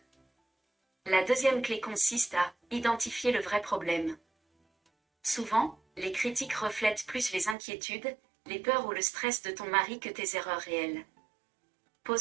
La deuxième clé consiste à identifier le vrai problème. Souvent, les critiques reflètent plus les inquiétudes, les peurs ou le stress de ton mari que tes erreurs réelles.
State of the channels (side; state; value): left; drops out; at 7.6 s